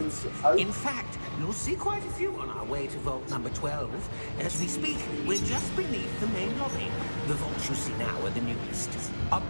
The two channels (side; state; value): both; inverted; correlation -1.00